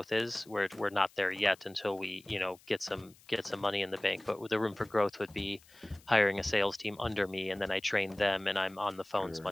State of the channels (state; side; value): noise; left; hiss, 26 dB below the sound